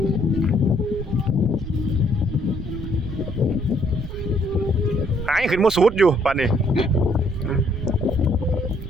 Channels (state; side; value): noise; right; rumble, 9 dB below the sound